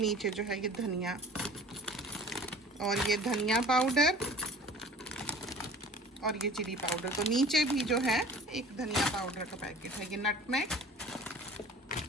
जो है ये धनिया, और ये धनिया पाउडर, और ये चिली पाउडर। तो नीचे भी जो है एक धनिया पाउडर का पैकेट है। ये नटमेग।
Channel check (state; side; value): normal; both; correlation 0.44